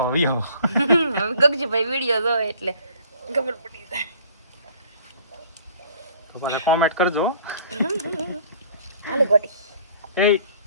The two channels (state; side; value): inverted; both; correlation -0.54